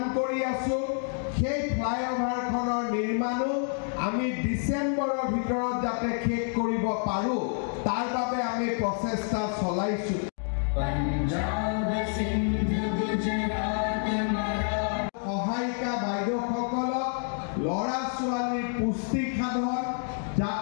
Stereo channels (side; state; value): right; silent; 55 dB below the other